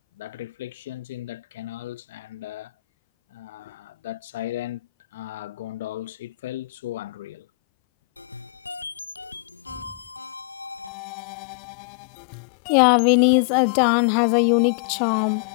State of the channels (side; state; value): right; drops out; at 10.9 s